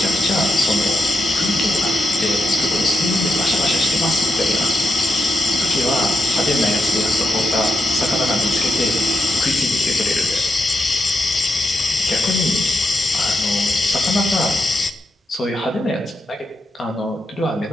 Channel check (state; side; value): normal; both; correlation 0.84